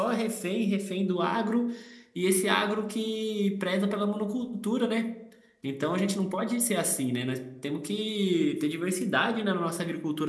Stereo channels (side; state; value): both; identical; correlation 1.00